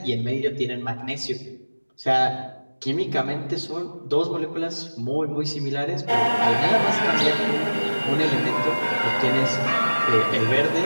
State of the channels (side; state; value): both; inverted; correlation -1.00